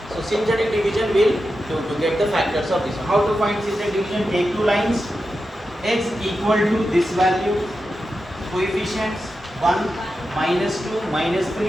So synthetic division will to get the factors of this one. How to find synthetic division? Take two lines, x equal to this value, coefficients 1, minus 2, minus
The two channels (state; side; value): normal; both; correlation 0.90